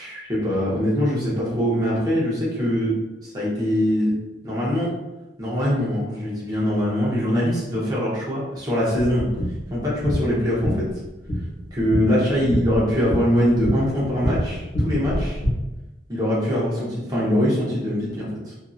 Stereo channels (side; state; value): both; normal; correlation 0.74